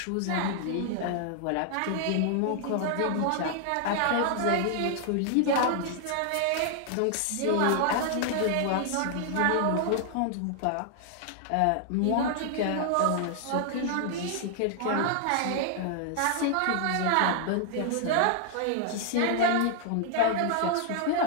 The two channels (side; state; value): both; different; correlation 0.00